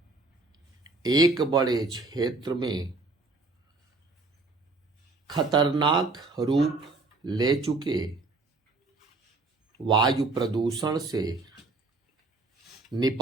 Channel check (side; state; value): left; quieter; 3.5 dB